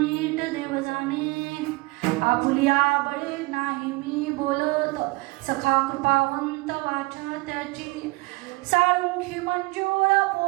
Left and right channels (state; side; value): quieter; left; 23.8 dB